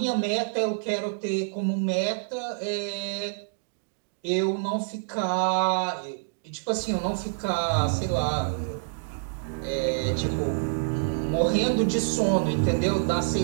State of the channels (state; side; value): silent; left; digital silence